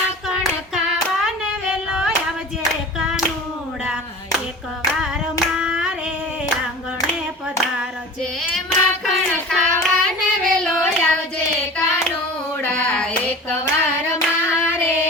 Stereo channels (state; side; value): normal; both; correlation 0.38